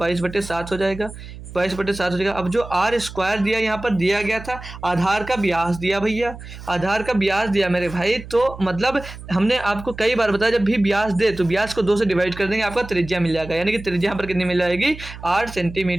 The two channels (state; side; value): noise; right; hum, 14 dB below the sound